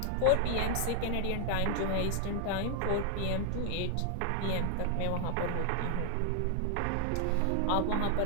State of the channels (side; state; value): both; different; correlation 0.00